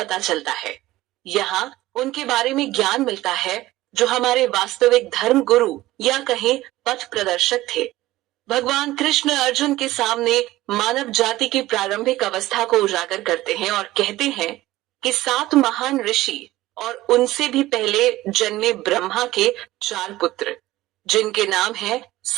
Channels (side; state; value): left; quieter; 16.8 dB